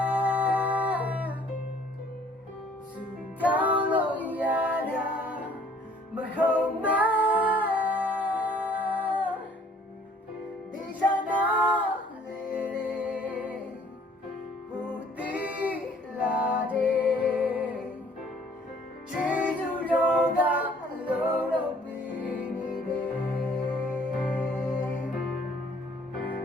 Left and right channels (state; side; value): normal; both; correlation 0.58